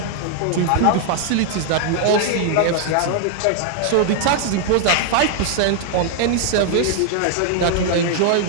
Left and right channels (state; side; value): different; both; correlation 0.00